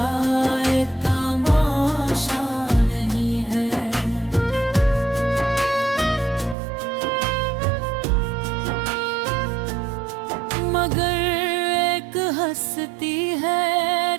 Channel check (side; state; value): left; drops out; at 6.6 s